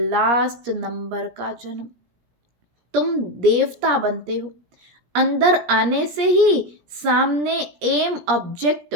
नंबर का जन्म। तुम देवता बनते हो। अंदर आने से ही सामने एम ऑब्जेक्ट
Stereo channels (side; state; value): left; late; 17 ms